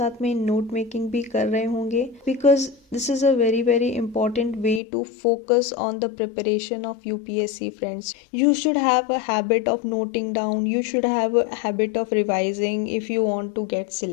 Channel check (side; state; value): right; drops out; at 4.8 s